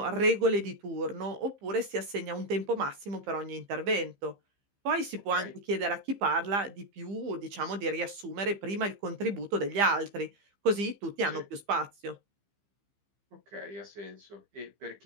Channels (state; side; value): late; left; 15 ms